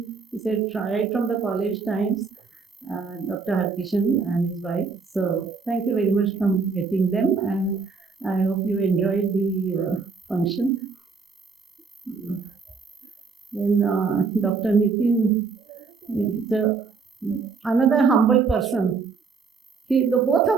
He said, right from the college times, Dr. Harkishan and his wife. So thank you very much for getting them, and I hope you enjoyed the function. Then Dr. Nitin, another humble person. Both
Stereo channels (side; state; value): left; quieter; 4.9 dB